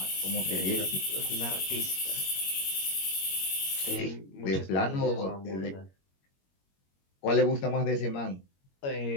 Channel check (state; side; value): late; right; 21 ms